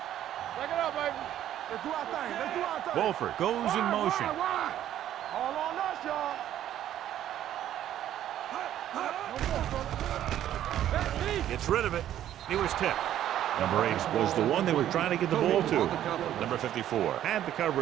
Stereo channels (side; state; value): left; quieter; 11.7 dB